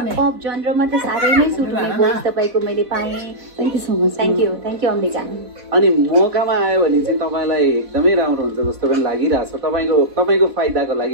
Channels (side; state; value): left; late; 4.1 ms